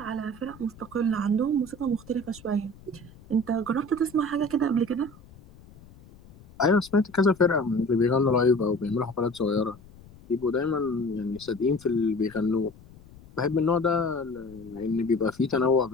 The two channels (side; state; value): left; noise; rumble, 22 dB below the sound